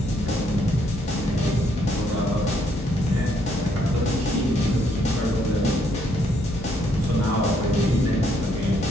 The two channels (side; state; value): both; normal; correlation 0.71